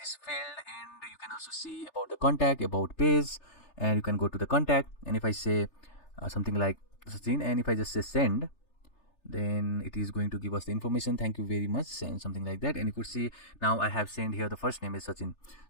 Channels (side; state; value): right; late; 3.3 ms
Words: field, and you can also see about the contact, about page, and you can go to the contact, and if I say something like Sachin, and if I just say send, then it is going to give us the information, thank you very much, and something like that. And you could see now I have sent here the first name is Sachin.